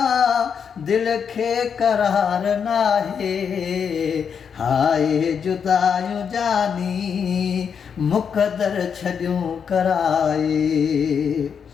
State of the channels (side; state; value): right; quieter; 7.0 dB